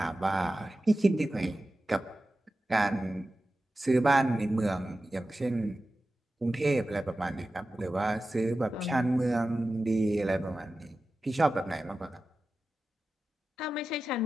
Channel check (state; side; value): normal; both; correlation 0.94